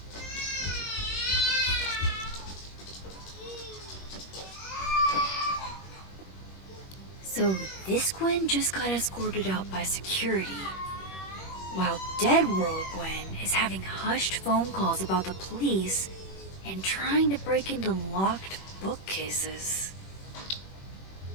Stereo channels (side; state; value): right; late; 21 ms